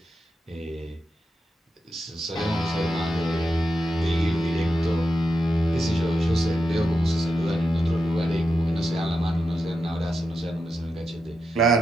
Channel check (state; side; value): normal; both; correlation 0.87